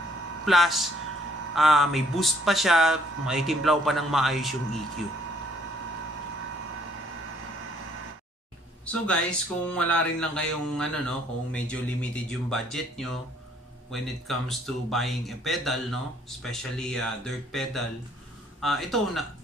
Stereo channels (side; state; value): both; normal; correlation 0.64